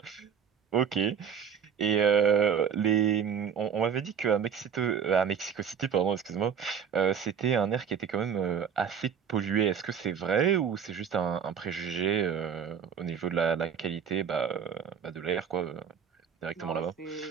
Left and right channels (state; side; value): quieter; left; 7.4 dB